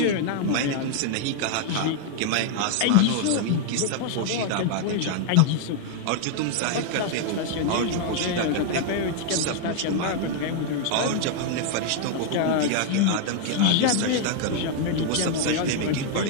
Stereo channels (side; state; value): both; different; correlation 0.00